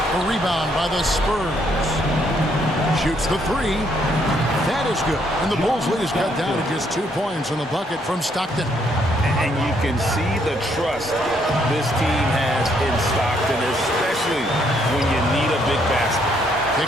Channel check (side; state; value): both; normal; correlation 0.71